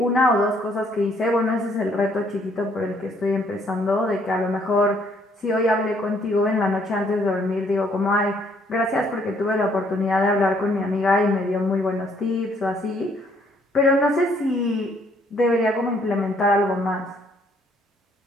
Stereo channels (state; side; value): normal; both; correlation 0.66